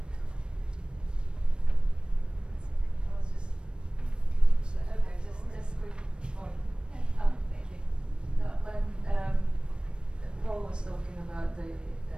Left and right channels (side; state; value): left; late; 0.055 ms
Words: Just quick point. Thank you. No, when Paul was talking about the,